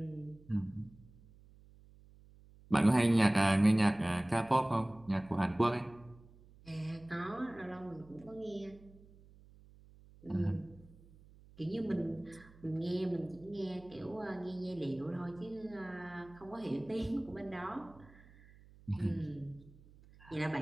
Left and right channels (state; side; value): noise; right; hum, 24 dB below the sound